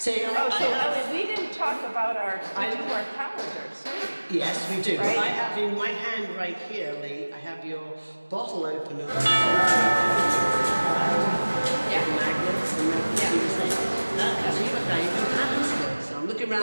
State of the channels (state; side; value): inverted; both; correlation -1.00